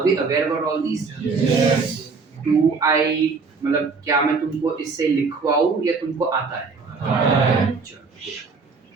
we aware about all these? Yes. Do I मतलब क्या मैं तुमको इससे लिखवाऊं या तुमको आता है?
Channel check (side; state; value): left; quieter; 4.6 dB